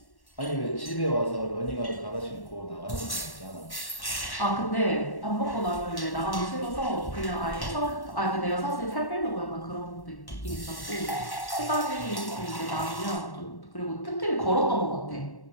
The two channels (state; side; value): late; right; 1.1 ms